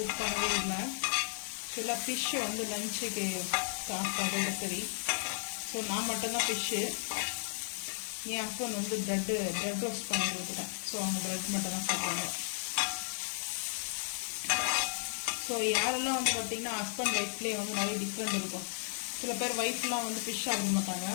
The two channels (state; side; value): silent; right; 55 dB below the other